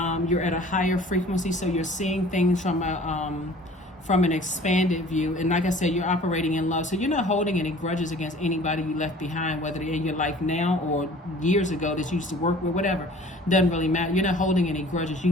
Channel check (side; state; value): both; normal; correlation 0.48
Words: at a higher frequency, so you're seeing things from an expanded view. And like I said, you're operating in love. So you're not holding any grudges against anybody you left behind, whether they're in your life now or years ago that you used to work with, whatever. Doesn't really matter. You're not holding any grudges.